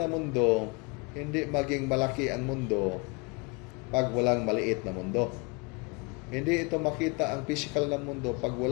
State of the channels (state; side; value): quieter; right; 29.8 dB